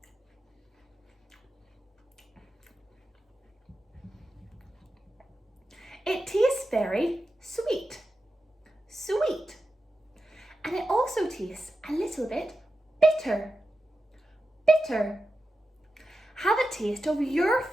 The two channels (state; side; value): normal; both; correlation 0.91